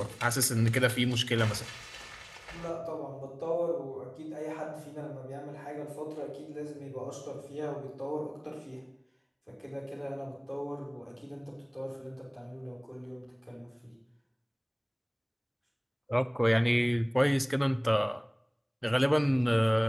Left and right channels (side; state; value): both; identical; correlation 1.00